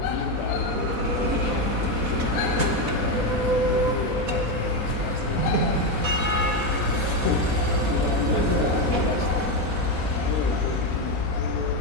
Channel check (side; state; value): left; late; 4.1 ms